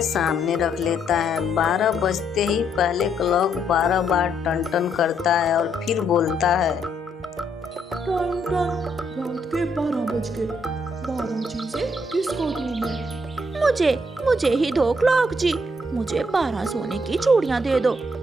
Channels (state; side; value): normal; both; correlation 0.73